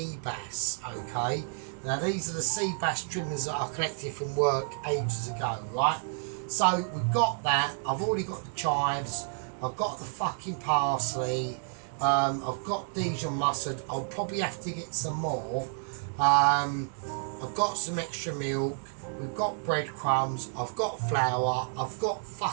bass. Okay, now these are the sea bass trimmings that I collected from work ages ago, right? So we've got that. I've already got the chives. I've got the fucking parsley. I've got Dijon mustard. I'll probably have to get some more. I've got some extra milk. We've got breadcrumbs. I've got flour. I've got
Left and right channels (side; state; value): left; silent; 58 dB below the other